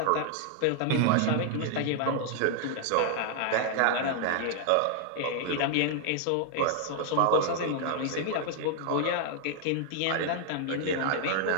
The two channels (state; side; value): different; both; correlation 0.00